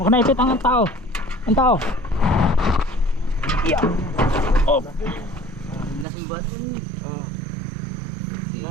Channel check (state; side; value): drops out; left; at 6.1 s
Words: na ipit ang tao. Ang tao. Yeah. Oh. Lasing ba? Oo.